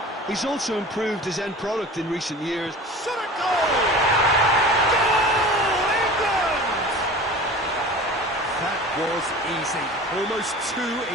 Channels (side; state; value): both; normal; correlation 0.38